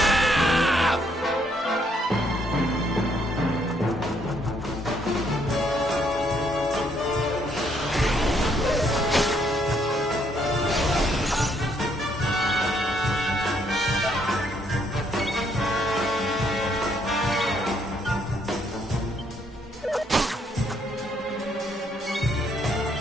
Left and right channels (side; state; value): both; normal; correlation 0.70